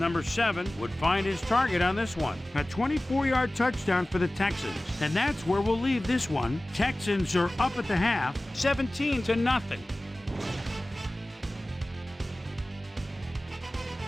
7 would find his target on this one. A 24-yard touchdown for the Texans. And that's where we'll leave this one. Texans are up at the half, 17-0.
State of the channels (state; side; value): normal; both; correlation 0.97